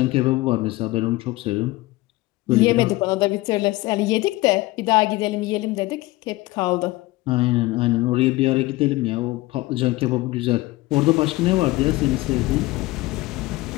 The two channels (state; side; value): quieter; right; 19.7 dB